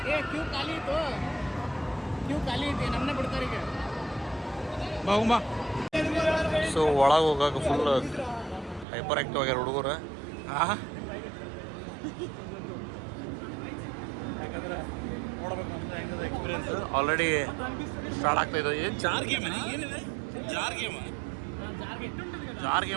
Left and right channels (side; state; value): left; drops out; at 8.8 s